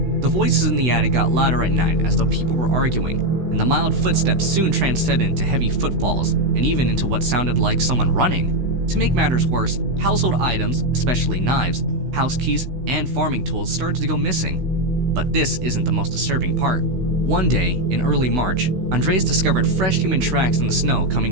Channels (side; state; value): left; late; 16 ms